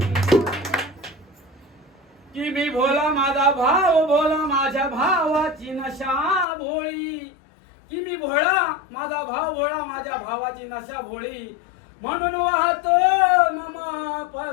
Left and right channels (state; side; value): drops out; right; at 6.5 s